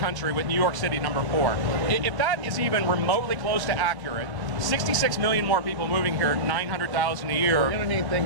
with New York City number 4. If that is even remotely close to accurate, 66 million more people moving here, 900,000 a year. We're going to need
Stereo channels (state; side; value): late; left; 1.0 ms